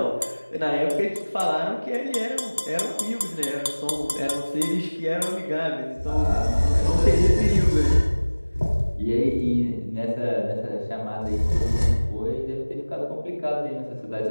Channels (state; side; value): inverted; both; correlation -1.00